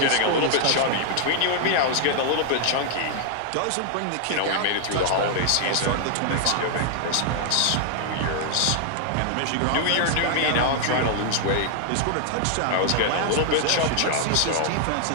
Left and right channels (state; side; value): different; both; correlation 0.00